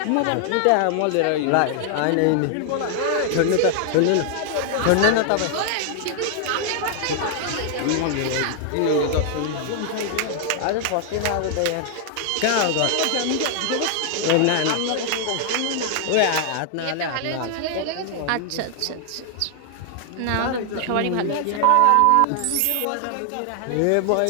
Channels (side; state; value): both; different; correlation 0.00